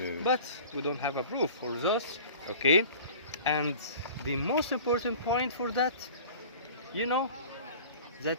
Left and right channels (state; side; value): inverted; both; correlation -0.42